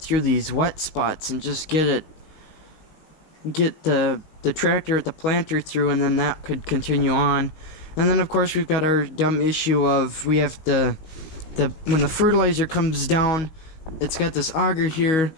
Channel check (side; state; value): right; late; 19 ms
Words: these wet spots and just get the tractor at the planter through, and then that could continue on. And then of course we've got our dumb issue of we have when the fertilizer comes down, it's got this auger here,